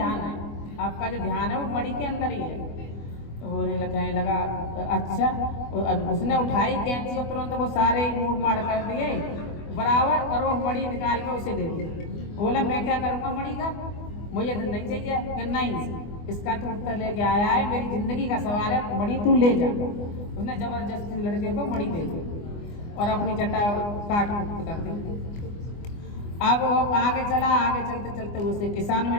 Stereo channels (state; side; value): late; right; 24 ms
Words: है। आपका जो ध्यान है वो मणि के अंदर ही है। तो वो कहने लगा अच्छा। अब उसने उठाई कैंची और तुरंत वो सारे मूड मार कर दिए बराबर, और वो मणि निकाल के उसे दे दी। बोला मैं क्या करूँगा मणि का, मुझे तो नहीं चाहिए। कि नहीं, इसका तू उत्तर लेके आया है, मेरी जिंदगी का सवाल है, मणि तू ले जा। उसने जबरदस्ती लड़के को मणि दे दी और अपनी जटा काट कर दी। अब वो आगे चला, आगे चलते चलते उसे किसान